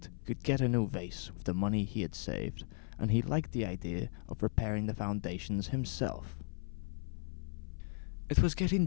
could get a new vase with the money he had saved, and he liked the idea of repairing the foundations himself. It was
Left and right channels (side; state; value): right; silent; 54 dB below the other